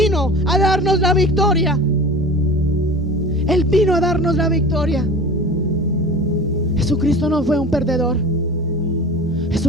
a darnos la victoria. Él vino a darnos la victoria. Jesucristo no fue un perdedor.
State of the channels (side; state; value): both; normal; correlation 0.36